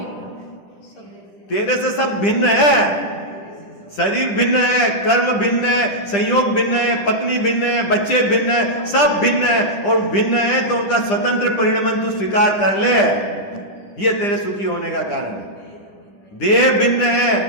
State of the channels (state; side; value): late; right; 10 ms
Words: तेरे से सब भिन्न है, शरीर भिन्न है, कर्म भिन्न है, संयोग भिन्न है, पत्नी भिन्न है, बच्चे भिन्न है, सब भिन्न है। और भिन्न है तो उनका स्वतंत्र परिणाम तू स्वीकार कर ले, ये तेरे सुखी होने का कारण है। देह भिन्न है,